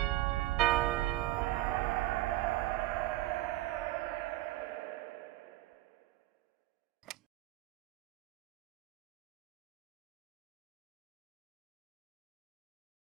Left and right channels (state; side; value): quieter; left; 17.1 dB